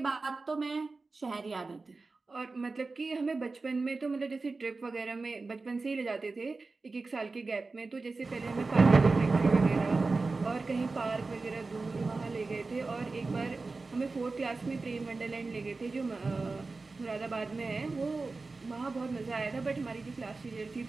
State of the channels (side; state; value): left; quieter; 3.8 dB